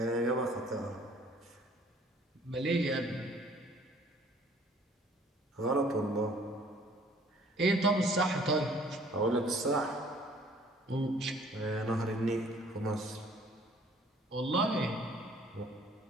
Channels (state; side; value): normal; both; correlation 0.56